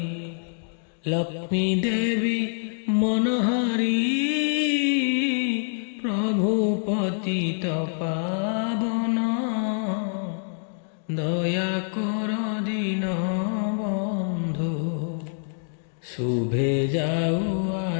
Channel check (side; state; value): right; silent; 61 dB below the other